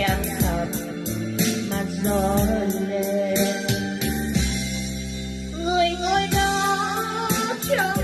âm thầm mà gió lên. Người ngồi đó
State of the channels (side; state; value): both; identical; correlation 1.00